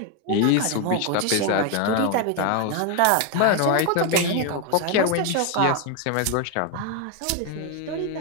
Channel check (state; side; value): different; both; correlation 0.01